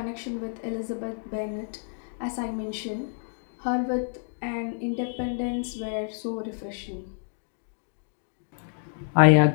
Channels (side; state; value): right; silent; digital silence